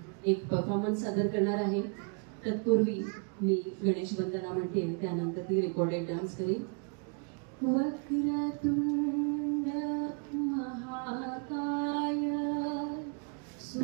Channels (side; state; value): left; quieter; 39.8 dB